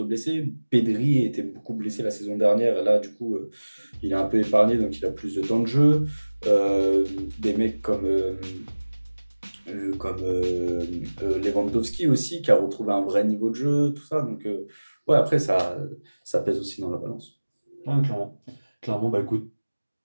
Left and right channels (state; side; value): inverted; both; correlation -1.00